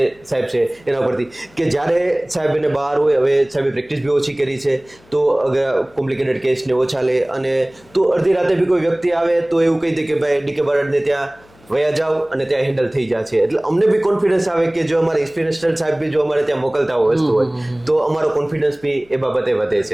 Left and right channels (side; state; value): left; noise; hum, 29 dB below the sound